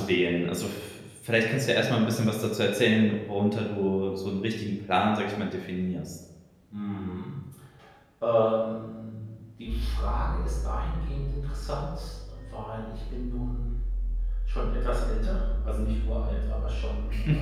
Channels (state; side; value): identical; both; correlation 1.00